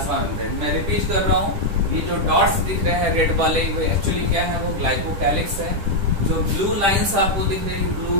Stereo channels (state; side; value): late; left; 10 ms